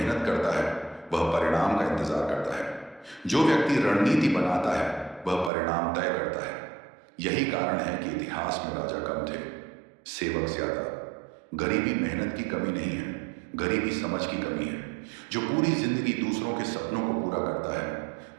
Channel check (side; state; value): left; drops out; at 5.5 s